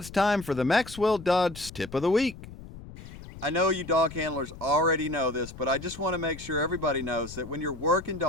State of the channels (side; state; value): left; noise; rumble, 15 dB below the sound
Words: time for the Maxwell Dodge Tip of the Week. I know you dog handlers already know this, but I just want to make sure everybody knows that when you're working